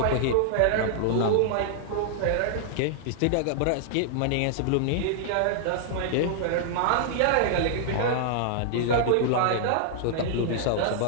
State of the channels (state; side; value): different; both; correlation -0.01